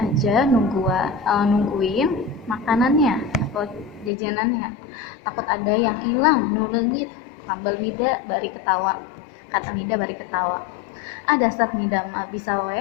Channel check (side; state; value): right; drops out; at 4.1 s